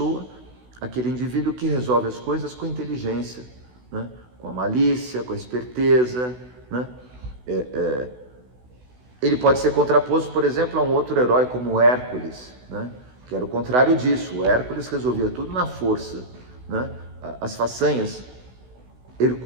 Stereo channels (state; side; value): late; left; 16 ms